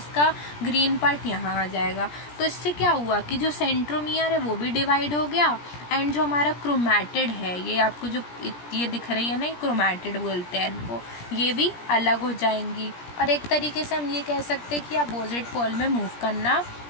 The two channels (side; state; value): right; late; 17 ms